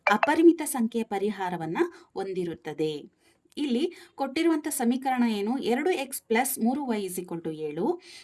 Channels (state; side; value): identical; both; correlation 1.00